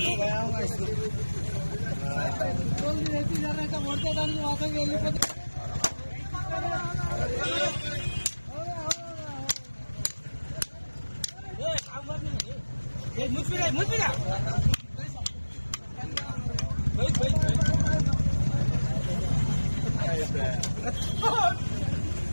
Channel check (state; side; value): inverted; both; correlation -1.00